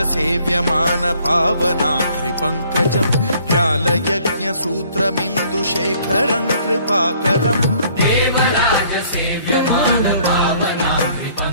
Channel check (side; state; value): both; inverted; correlation -0.60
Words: सेव्यमान पावनाघ्रिपङ्कजम् व्यालयज्ञसूत्रमिन्दुशेखरं कृपाकरम् देवराज सेव्यमान